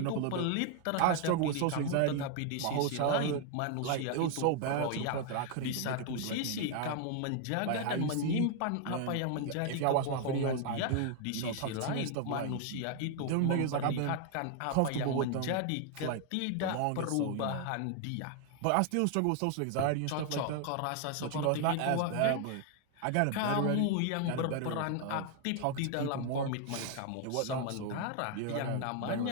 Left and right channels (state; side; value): different; both; correlation 0.00